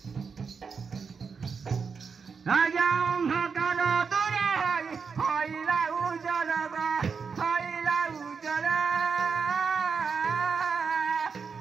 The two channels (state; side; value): quieter; left; 5.6 dB